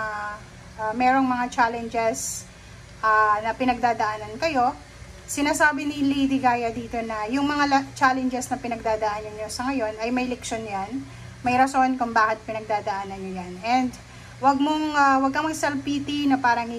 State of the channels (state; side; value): identical; both; correlation 1.00